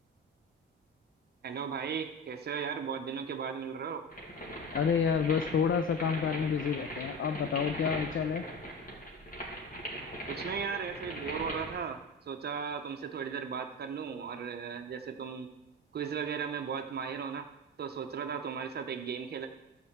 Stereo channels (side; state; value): both; normal; correlation 0.27